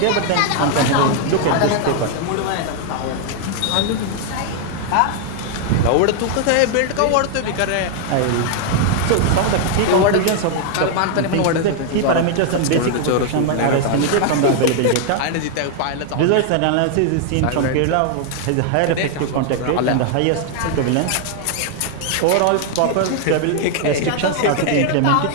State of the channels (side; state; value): both; different; correlation 0.00